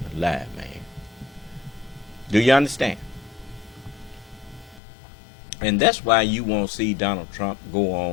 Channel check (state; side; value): drops out; right; at 4.8 s